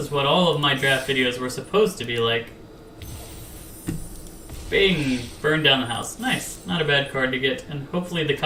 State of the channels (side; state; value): both; identical; correlation 1.00